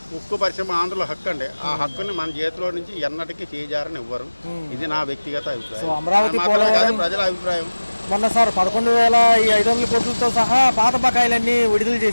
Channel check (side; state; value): both; inverted; correlation -1.00